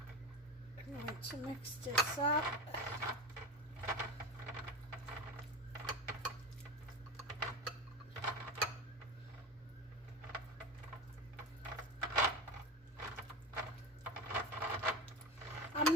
I'm going to mix this up. I'm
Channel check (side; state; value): both; normal; correlation 0.26